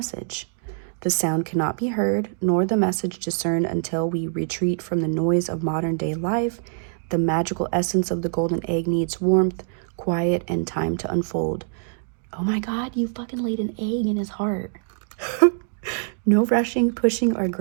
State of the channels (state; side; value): silent; left; digital silence